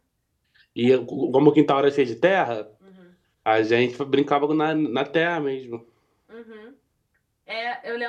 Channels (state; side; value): identical; both; correlation 1.00